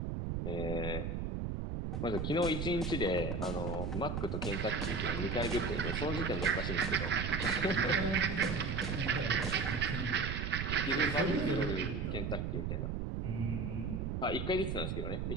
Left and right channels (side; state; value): right; noise; rumble, 2 dB below the sound